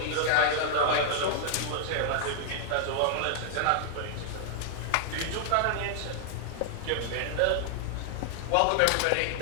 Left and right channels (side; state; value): both; different; correlation 0.00